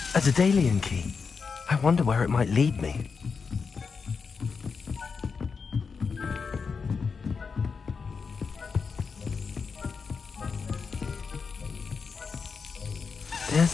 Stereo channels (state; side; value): quieter; right; 5.3 dB